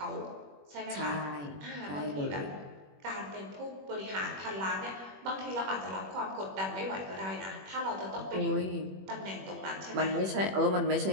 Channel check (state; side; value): late; left; 21 ms